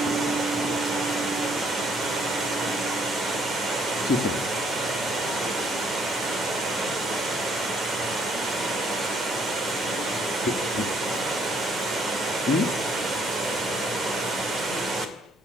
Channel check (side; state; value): both; normal; correlation 0.66